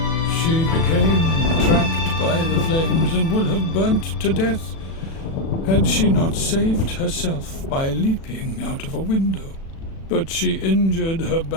She became trapped by the flames and would have burnt to death had she not saved herself by leaping out of a window. But she injured her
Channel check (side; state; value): right; late; 36 ms